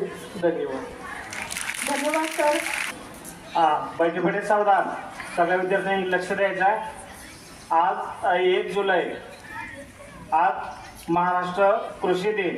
धन्यवाद. धन्यवाद सर. बैठे बैठे सावधान, सगळ्या विद्यार्थ्यांनी लक्ष द्यायचं आहे. आज 1 जुलै, आज महाराष्ट्र कृषी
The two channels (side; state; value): both; identical; correlation 1.00